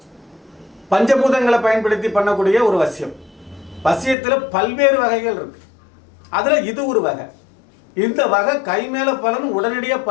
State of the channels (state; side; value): drops out; right; at 4.2 s